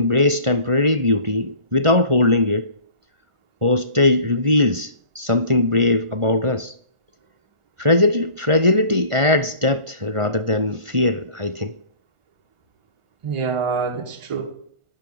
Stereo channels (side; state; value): left; late; 1.4 ms